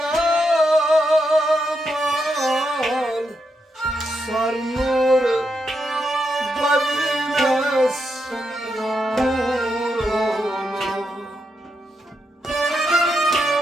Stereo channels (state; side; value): normal; both; correlation 0.83